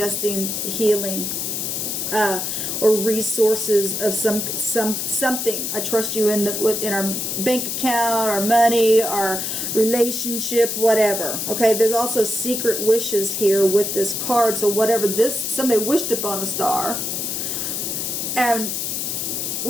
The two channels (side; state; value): left; noise; hiss, 2 dB below the sound